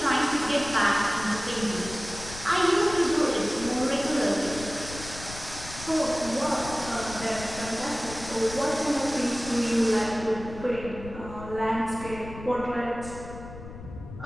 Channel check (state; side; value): noise; left; rumble, 13 dB below the sound